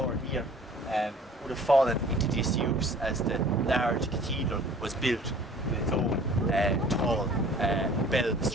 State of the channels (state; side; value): normal; both; correlation 0.50